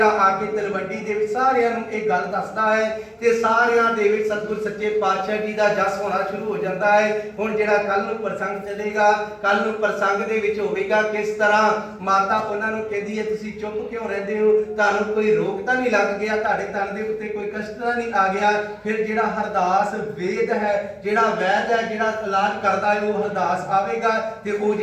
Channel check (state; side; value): identical; both; correlation 1.00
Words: ਆ ਕੇ ਤਲਵੰਡੀ ਦੇ ਵਿੱਚ ਸਾਰਿਆਂ ਨੂੰ ਇਹ ਗੱਲ ਦੱਸਦਾ ਹੈ ਤੇ ਸਾਰਿਆਂ ਦੇ ਵਿੱਚ ਸਤਿਗੁਰ ਸੱਚੇ ਪਾਤਸ਼ਾਹ ਜੀ ਦਾ ਜਸ ਹੋਣਾ ਸ਼ੁਰੂ ਹੋ ਜਾਂਦਾ ਹੈ। ਹੁਣ ਜਿਹੜਾ ਕੱਲ ਨੂੰ ਪ੍ਰਸੰਗ ਚੱਲੇਗਾ, ਕੱਲ ਨੂੰ ਪ੍ਰਸੰਗ ਦੇ ਵਿੱਚ ਹੋਵੇਗਾ ਕਿਸ ਤਰ੍ਹਾਂ ਮਾਤਾ ਉਹਨਾਂ ਨੂੰ ਕਹਿੰਦੀ ਹੈ ਤੁਸੀਂ ਚੁੱਪ ਕਿਉਂ ਰਹਿੰਦੇ ਹੋ, ਤੁਹਾਨੂੰ ਕੋਈ ਰੋਗ ਤਾਂ ਨਹੀਂ ਲੱਗ ਗਿਆ, ਤੁਹਾਡੇ ਤਨ ਦੇ ਉੱਤੇ ਕੋਈ ਕਸ਼ਟ ਤਾਂ ਨਹੀਂ ਆ ਗਿਆ। ਫਿਰ ਜਿਹੜਾ ਹਰਦਾਸ ਵੇਦ ਹੈ, ਜਿਹੜਾ ਵੈਦ ਹੈ, ਜਿਹੜਾ ਇਲਾਜ ਕਰਦਾ ਹੈ, ਉਹ ਹਰਦਾਸ ਆਵੇਗਾ ਤੇ ਉਹ